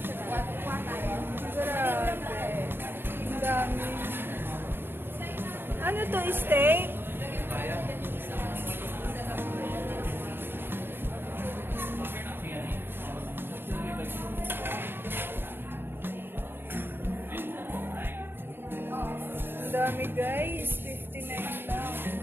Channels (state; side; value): late; left; 0.10 ms